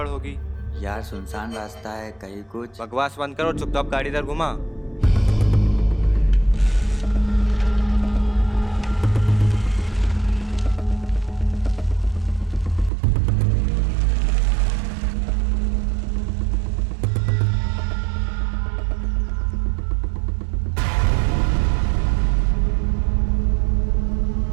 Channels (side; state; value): left; drops out; at 12.9 s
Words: होगी? यार सुनसान रास्ता है, कहीं कुछ। बकवास बंद करो, चुपचाप गाड़ी इधर घुमा।